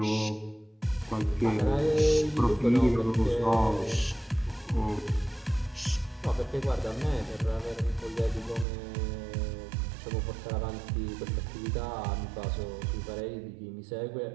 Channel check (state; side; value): drops out; left; at 8.7 s